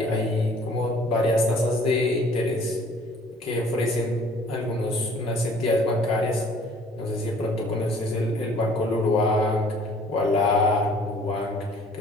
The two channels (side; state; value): both; normal; correlation 0.55